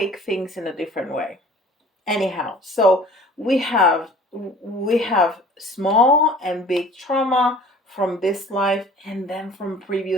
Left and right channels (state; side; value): normal; both; correlation 0.48